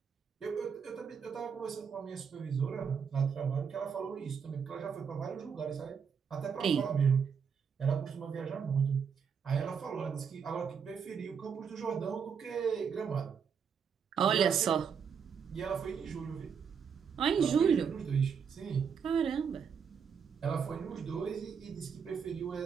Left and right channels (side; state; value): left; quieter; 6.7 dB